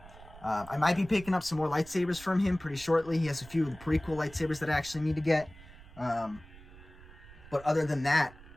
I might be picking up some more lightsabers from him pretty shortly. He has a few of the prequel lightsabers that I actually need to get. But other than that,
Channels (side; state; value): right; noise; rumble, 19 dB below the sound